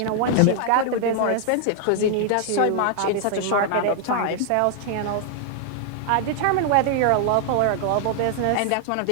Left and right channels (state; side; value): different; both; correlation 0.00